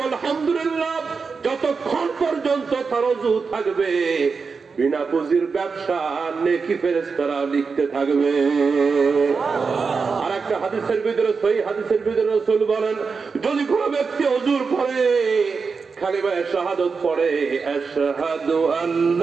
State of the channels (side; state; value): left; quieter; 5.0 dB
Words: হামদুলিল্লাহ, যতক্ষণ পর্যন্ত তার ওযু থাকবে বিনা পুঁজির ব্যবসা নেকি ফেরেশতারা লিখতে থাকবে। আর একটা হাদিসের ভিতরে, সহিহ হাদিসের ভিতরে রাসূল বলেন, যদি কোনো ব্যক্তি ওযুর পড়ে কালিমা শাহাদাত পড়ে, আশহাদু